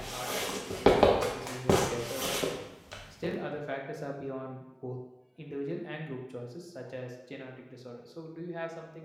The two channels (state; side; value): identical; both; correlation 1.00